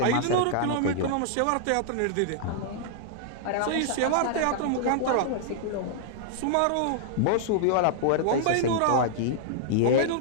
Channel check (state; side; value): different; both; correlation -0.01